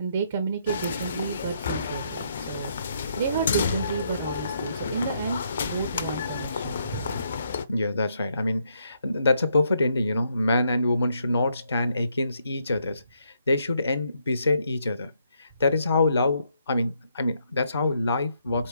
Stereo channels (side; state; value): both; inverted; correlation -0.75